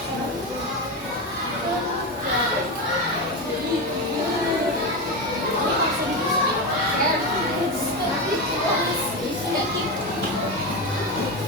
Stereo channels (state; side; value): normal; both; correlation 0.16